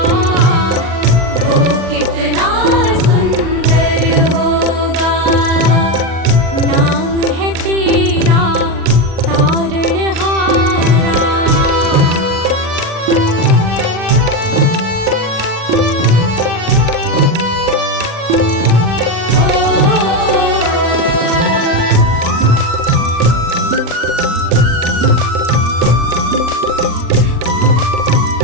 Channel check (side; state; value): left; late; 36 ms